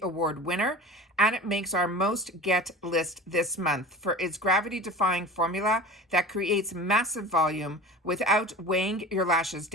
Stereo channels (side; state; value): both; normal; correlation 0.36